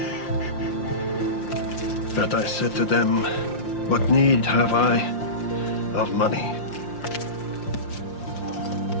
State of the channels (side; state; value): right; late; 5.7 ms